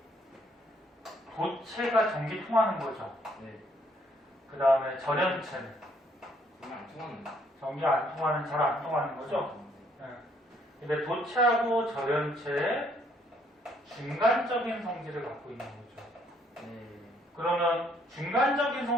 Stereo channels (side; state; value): both; normal; correlation 0.67